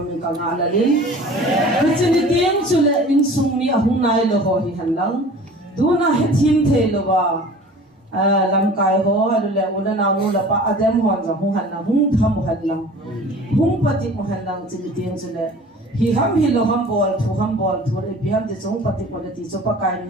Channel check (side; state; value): both; normal; correlation 0.44